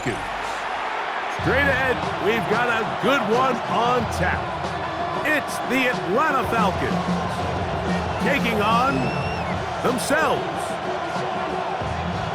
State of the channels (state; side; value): identical; both; correlation 1.00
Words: Straight ahead, we've got a good one on tap. It's the Atlanta Falcons taking on themselves.